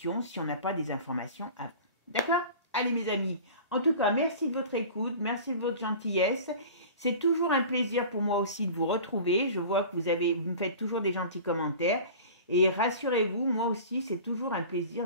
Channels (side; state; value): both; inverted; correlation -0.39